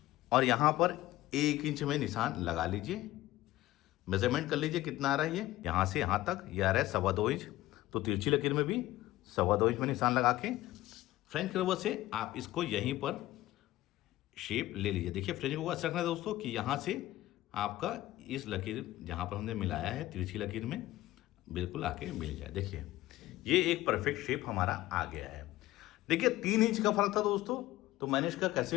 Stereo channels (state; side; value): quieter; right; 16.4 dB